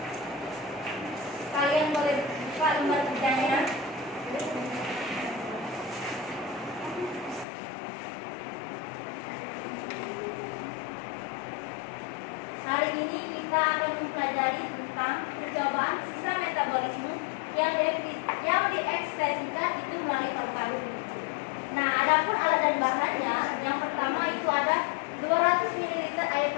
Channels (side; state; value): right; drops out; at 7.5 s